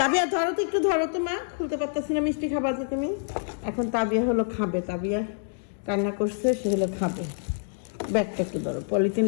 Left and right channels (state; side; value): silent; right; digital silence